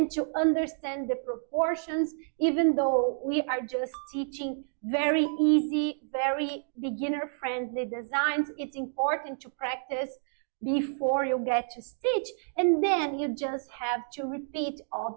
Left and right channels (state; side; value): silent; left; digital silence